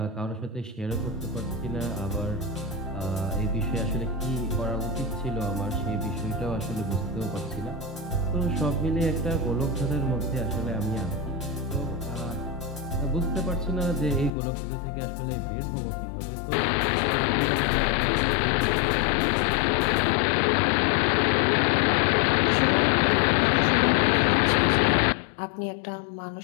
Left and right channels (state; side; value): drops out; right; at 14.3 s